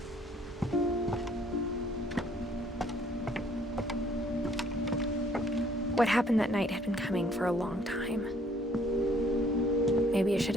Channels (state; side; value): normal; both; correlation 0.61